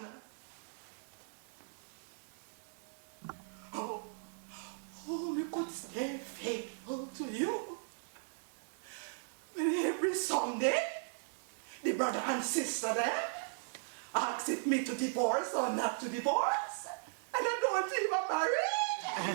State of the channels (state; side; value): silent; left; digital silence